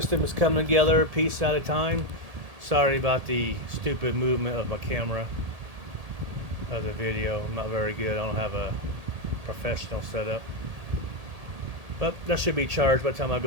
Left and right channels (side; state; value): left; late; 1.8 ms